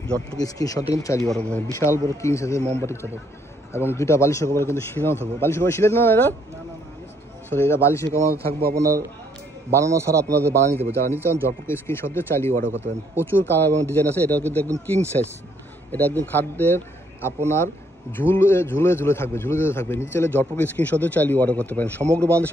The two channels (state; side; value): normal; both; correlation 0.68